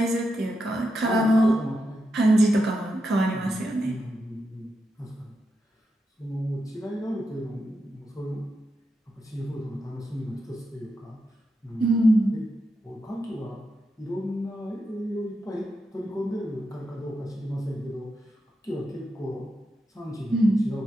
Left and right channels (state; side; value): normal; both; correlation 0.86